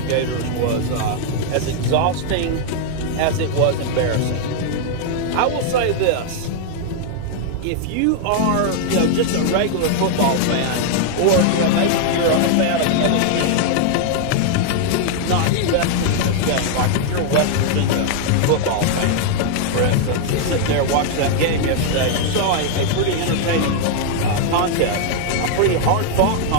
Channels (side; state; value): both; different; correlation 0.00